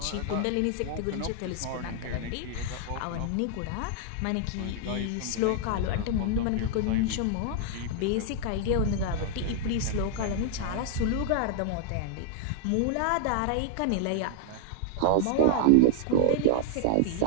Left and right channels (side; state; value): both; different; correlation 0.00